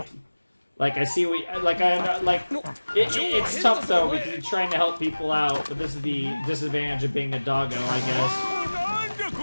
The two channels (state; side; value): inverted; both; correlation -1.00